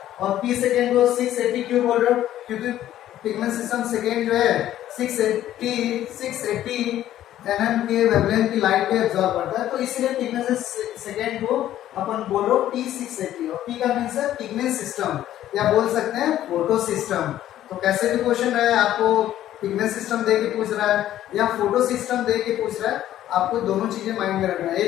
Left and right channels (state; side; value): quieter; right; 12.6 dB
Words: और पी सेकेंड को 680 क्यों बोल रहे हो, क्योंकि पिगमेंट सिस्टम सेकेंड जो है 680 एनएम के वेवलेंथ की लाइट को एब्जॉर्ब करता है, तो इसलिए पिगमेंट सेकेंड को अपन बोलो पी 680। और पी का मीन्स है पिगमेंट सिस्टम, या बोल सकते हैं फोटो सिस्टम। तो कैसे भी क्वेश्चन रहे, आपको पिगमेंट सिस्टम दे के पूछ रहा है या फोटो सिस्टम दे के पूछ रहा है, आपको दोनों चीजें माइंड में रखना है। ये